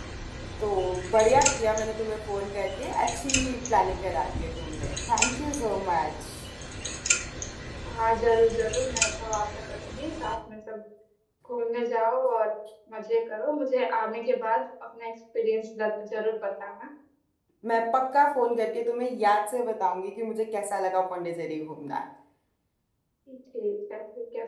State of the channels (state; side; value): identical; both; correlation 1.00